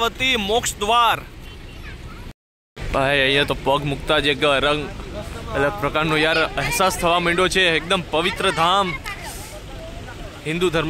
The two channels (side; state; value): both; identical; correlation 1.00